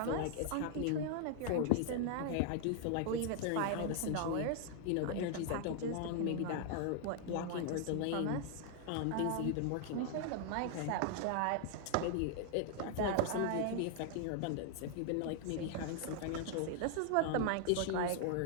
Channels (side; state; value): both; different; correlation 0.00